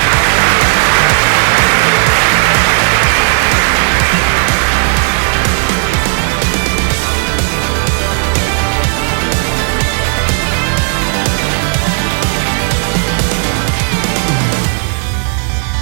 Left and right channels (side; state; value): left; silent; digital silence